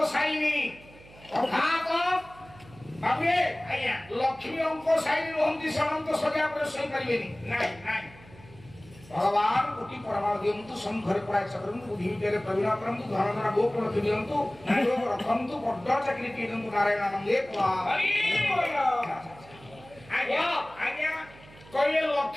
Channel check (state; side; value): noise; right; hum, 22 dB below the sound